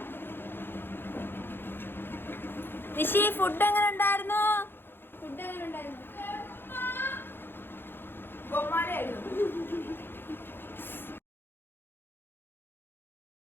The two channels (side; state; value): right; late; 0.10 ms